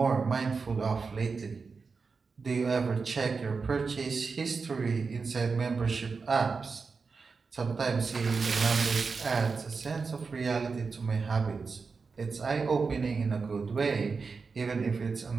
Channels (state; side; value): quieter; left; 4.8 dB